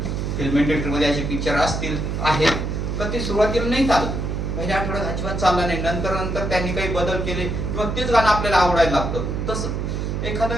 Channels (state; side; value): noise; right; hum, 2 dB below the sound